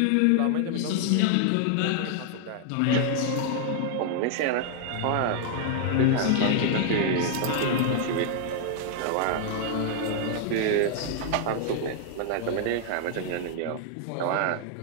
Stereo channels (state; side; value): different; both; correlation 0.00